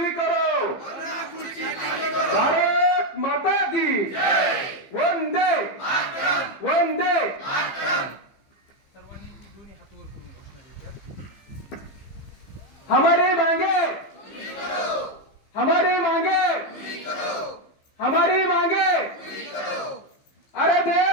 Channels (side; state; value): right; late; 15 ms